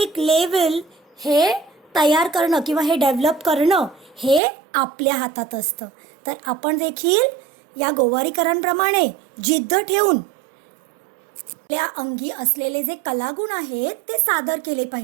लेवल हे तयार करणं किंवा हे डेव्हलप करणं हे आपल्या हातात असतं. तर आपण देखील या गोवारीकरांप्रमाणे जिद्द ठेवून आपल्या अंगी असलेले जे कलागुण आहेत ते सादर केले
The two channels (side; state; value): left; drops out; at 4.4 s